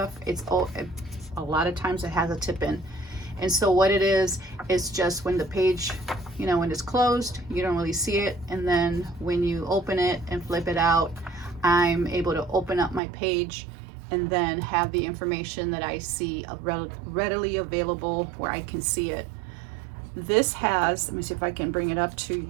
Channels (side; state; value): left; drops out; at 13.0 s